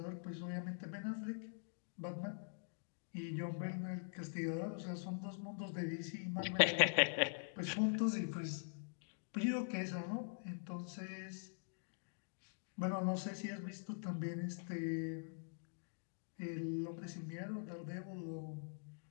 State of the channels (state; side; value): silent; right; digital silence